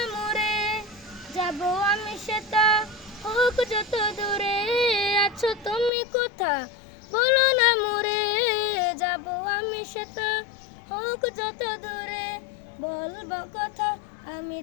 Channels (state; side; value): drops out; right; at 5.9 s